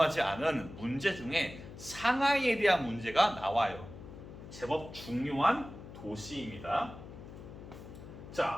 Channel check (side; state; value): left; noise; hum, 14 dB below the sound